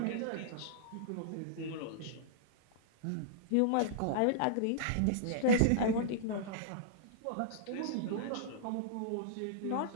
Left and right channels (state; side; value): different; both; correlation -0.02